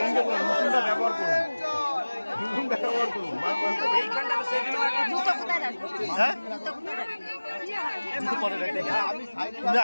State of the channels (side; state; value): both; inverted; correlation -1.00